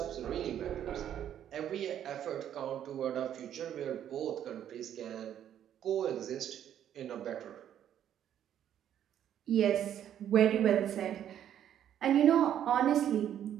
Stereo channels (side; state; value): left; quieter; 10.3 dB